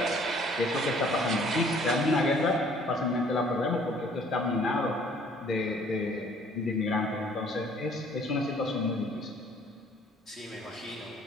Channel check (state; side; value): normal; both; correlation 0.57